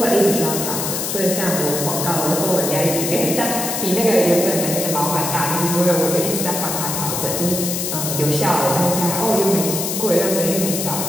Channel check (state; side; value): noise; left; hiss, 2 dB below the sound